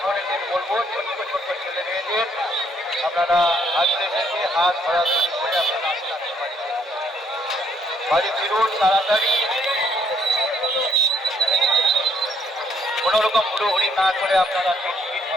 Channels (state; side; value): normal; both; correlation 0.68